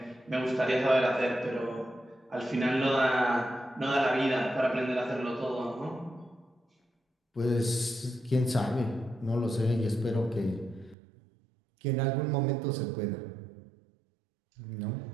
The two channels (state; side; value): drops out; left; at 11.0 s